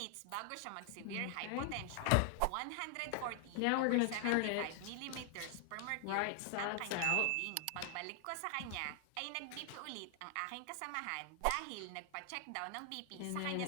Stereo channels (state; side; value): different; both; correlation 0.00